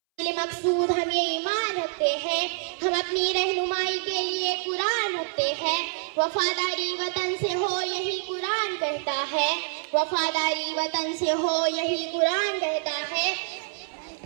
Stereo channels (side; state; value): left; silent; 60 dB below the other